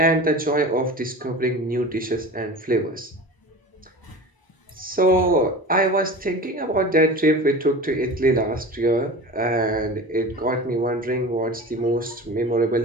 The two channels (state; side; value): normal; both; correlation 0.34